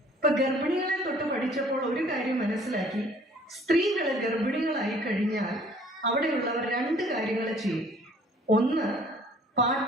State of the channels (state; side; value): normal; both; correlation 0.55